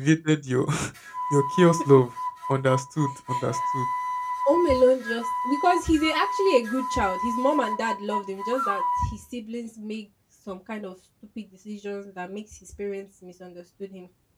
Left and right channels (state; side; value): identical; both; correlation 1.00